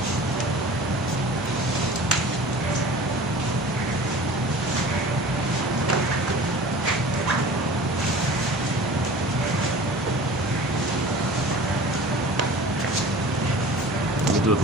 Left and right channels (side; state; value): both; normal; correlation 0.41